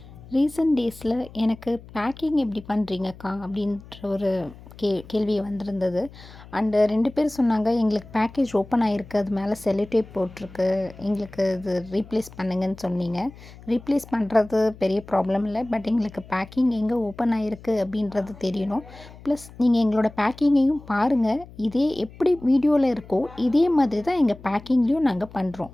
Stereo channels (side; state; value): left; noise; hum, 19 dB below the sound